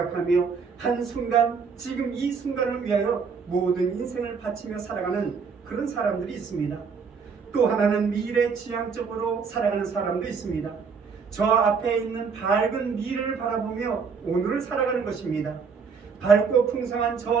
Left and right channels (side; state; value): left; quieter; 5.6 dB